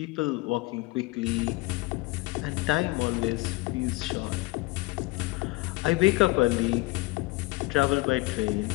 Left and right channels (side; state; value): right; quieter; 22.1 dB